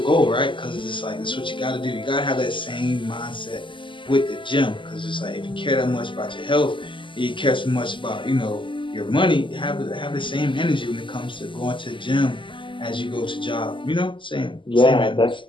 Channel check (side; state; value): right; late; 0.24 ms